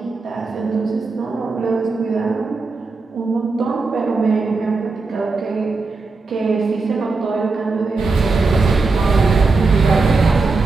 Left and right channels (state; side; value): quieter; left; 3.9 dB